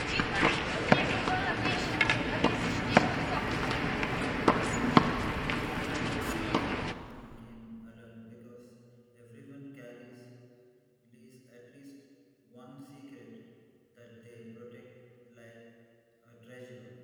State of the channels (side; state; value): both; identical; correlation 1.00